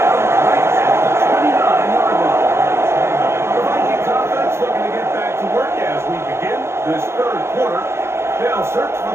right at the 29-yard line. The Vikings offense looking to get back to work as we begin this 3rd quarter. They'll search for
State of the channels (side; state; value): left; late; 0.12 ms